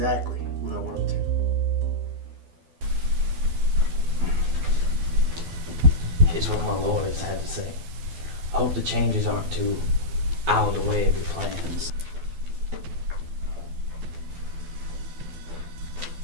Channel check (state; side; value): late; left; 12 ms